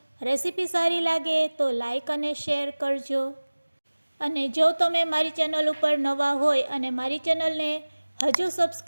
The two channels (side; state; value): both; inverted; correlation -1.00